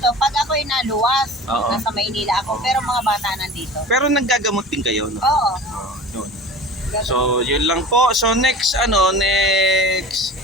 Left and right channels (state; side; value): normal; both; correlation 0.37